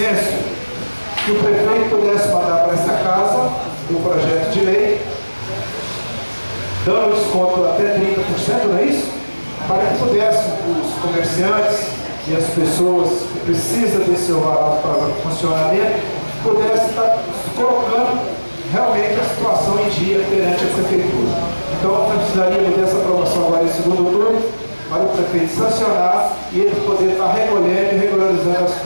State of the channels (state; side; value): inverted; both; correlation -1.00